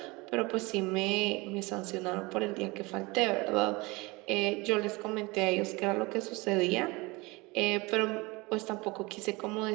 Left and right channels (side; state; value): left; quieter; 24.4 dB